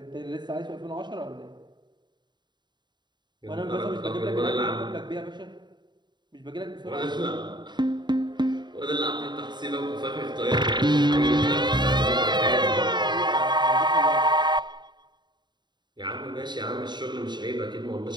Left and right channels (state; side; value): late; left; 0.21 ms